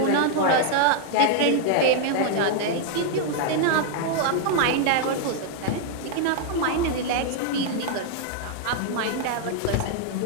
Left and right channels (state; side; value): different; both; correlation 0.00